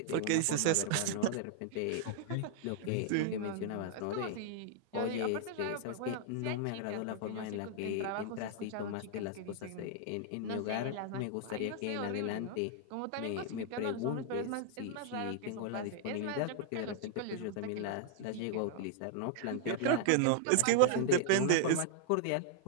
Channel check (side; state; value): both; different; correlation -0.01